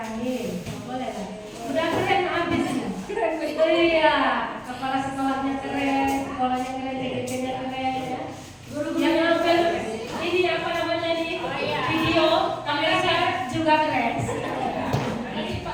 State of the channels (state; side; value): identical; both; correlation 1.00